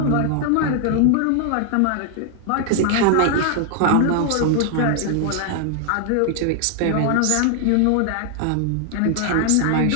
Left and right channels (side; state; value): both; different; correlation 0.00